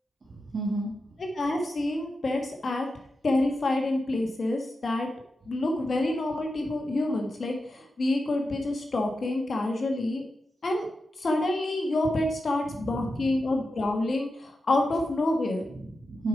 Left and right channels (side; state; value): both; normal; correlation 0.90